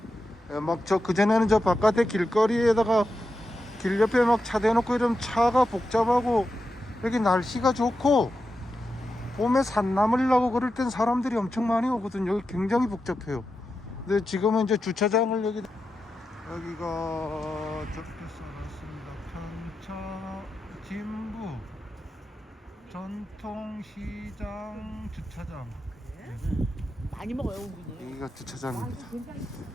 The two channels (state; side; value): normal; both; correlation 0.89